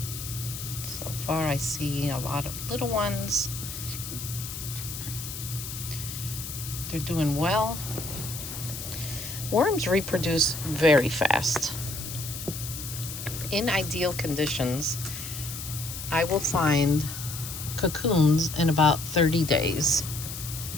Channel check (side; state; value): left; noise; hiss, 8 dB below the sound